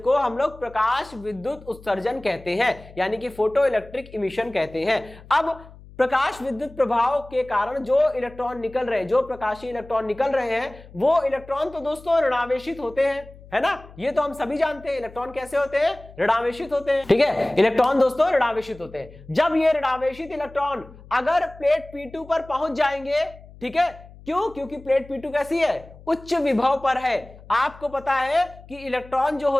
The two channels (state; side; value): noise; left; hum, 20 dB below the sound